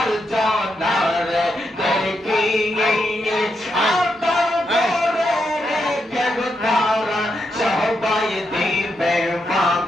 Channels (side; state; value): both; normal; correlation 0.83